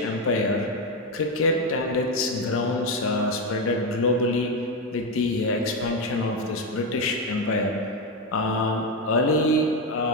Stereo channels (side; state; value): both; normal; correlation 0.10